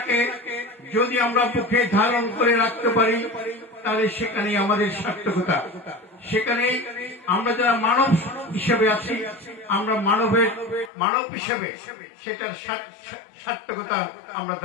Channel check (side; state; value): right; drops out; at 10.9 s